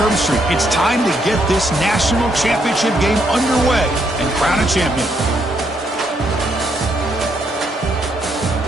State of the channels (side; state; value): both; normal; correlation 0.75